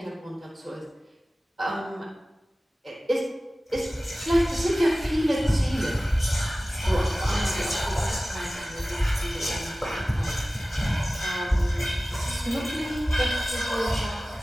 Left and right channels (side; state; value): both; normal; correlation 0.97